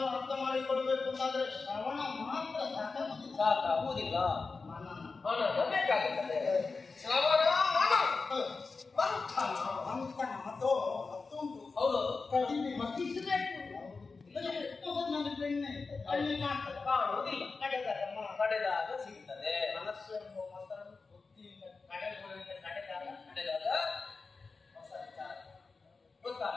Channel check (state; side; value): quieter; right; 4.2 dB